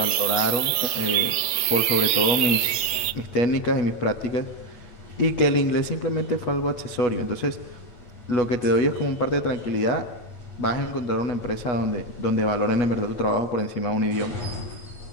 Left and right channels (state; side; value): late; right; 8.2 ms